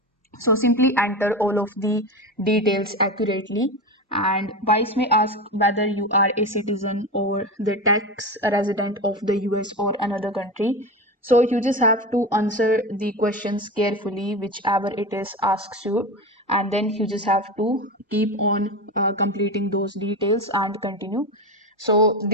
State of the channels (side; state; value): both; normal; correlation 0.21